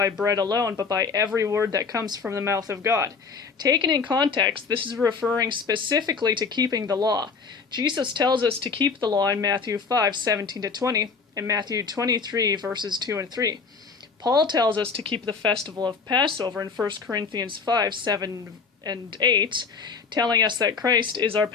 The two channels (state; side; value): quieter; right; 5.1 dB